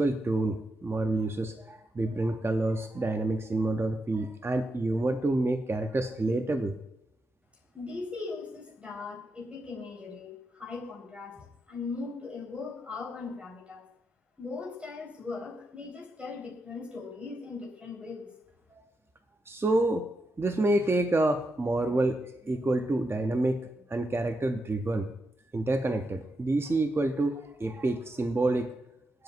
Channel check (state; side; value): normal; both; correlation 0.85